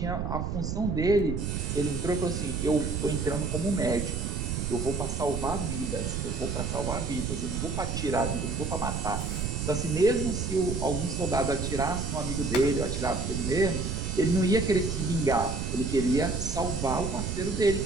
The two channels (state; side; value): noise; right; rumble, 2 dB below the sound